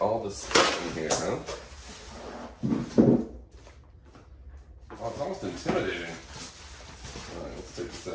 this stuff in here, huh? Oh, it's almost intimidating. Alright, let's take this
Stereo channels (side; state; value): both; identical; correlation 1.00